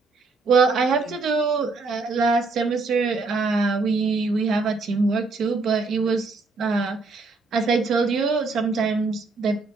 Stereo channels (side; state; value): left; quieter; 3.9 dB